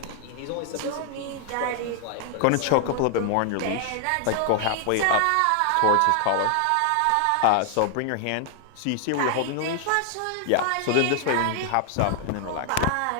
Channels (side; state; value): both; different; correlation 0.00